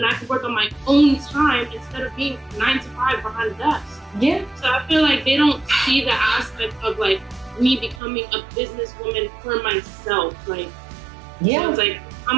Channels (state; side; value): drops out; left; at 8.0 s